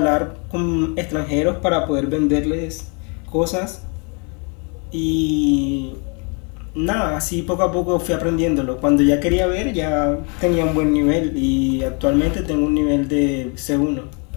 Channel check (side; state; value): right; quieter; 35.3 dB